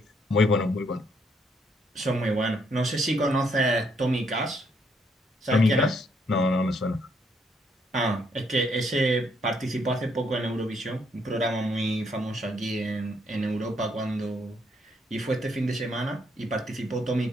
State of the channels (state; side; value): normal; both; correlation 0.71